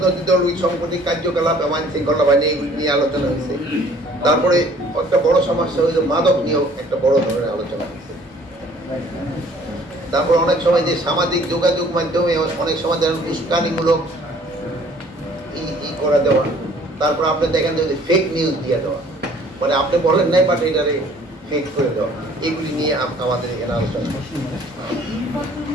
দল সাম্প্রতিক কার্যকলাপ এবং আইন শৃঙ্খলা বাহিনী এগুলি নিয়ে আলোচনা হয়েছে। তারপরে একটা বড় সমস্যা হয়েছে মাদক নিয়েও একটা বড় ধরনের আলোচনা হয়েছে। তারপর অনেক সময় যে সামাজিক যোগাযোগ মাধ্যমে অনেক সময় যেন উস্কানিমূলক করা দেওয়া, তারপর আপনি দেখেন যে ফেক নিউজ দিয়ে দেওয়া, মানে আপনি বলেন নাই বাট এটারে ফেক করে দেওয়া, এগুলি নিয়ে আমাদের এখানে আলোচনা।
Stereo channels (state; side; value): normal; both; correlation 0.56